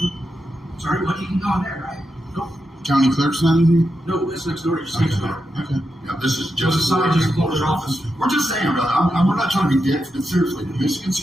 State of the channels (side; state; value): both; normal; correlation 0.87